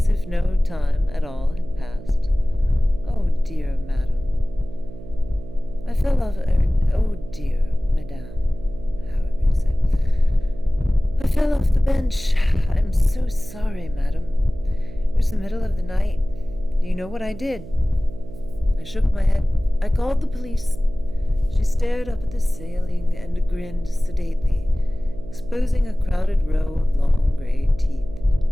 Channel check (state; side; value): noise; right; hum, 15 dB below the sound